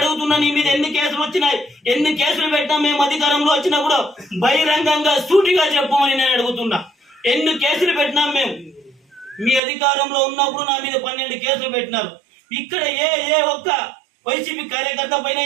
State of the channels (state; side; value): drops out; left; at 9.6 s